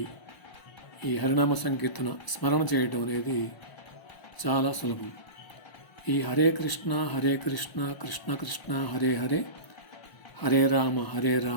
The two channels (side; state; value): right; late; 1.0 ms